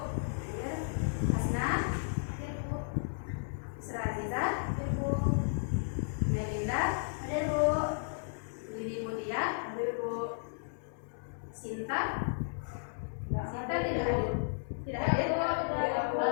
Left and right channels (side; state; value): right; silent; digital silence